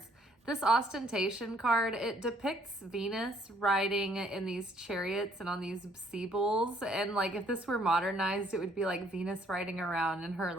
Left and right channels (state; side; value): normal; both; correlation 0.64